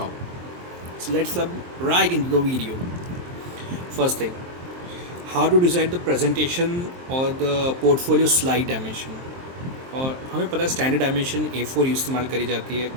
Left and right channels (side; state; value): left; late; 23 ms